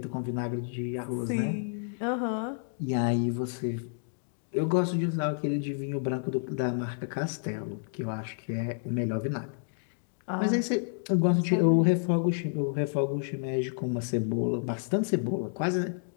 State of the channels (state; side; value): silent; right; digital silence